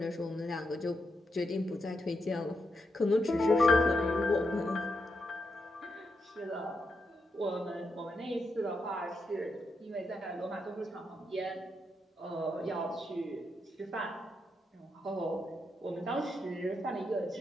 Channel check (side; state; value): both; normal; correlation 0.84